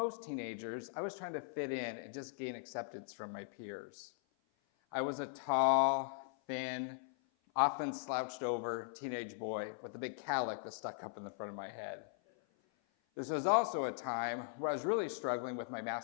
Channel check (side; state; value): right; silent; 51 dB below the other